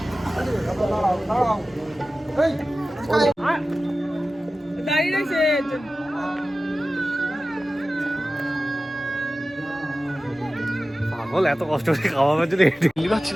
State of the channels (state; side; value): normal; both; correlation 0.95